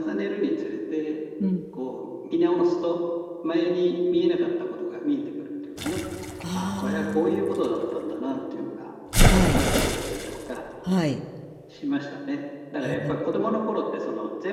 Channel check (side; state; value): both; identical; correlation 1.00